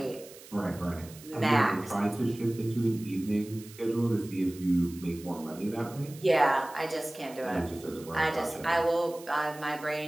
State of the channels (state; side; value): noise; right; hiss, 19 dB below the sound